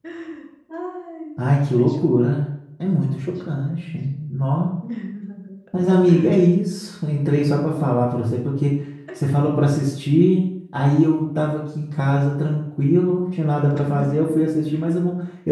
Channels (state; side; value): identical; both; correlation 1.00